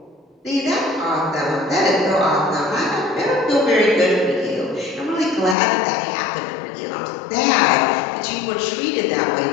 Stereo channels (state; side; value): drops out; right; at 5.6 s